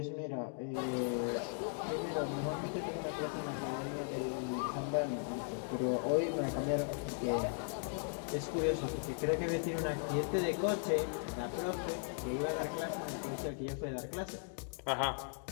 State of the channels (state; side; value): silent; right; 53 dB below the other